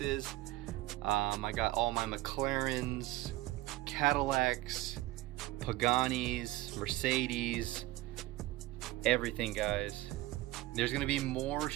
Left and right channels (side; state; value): left; quieter; 18.1 dB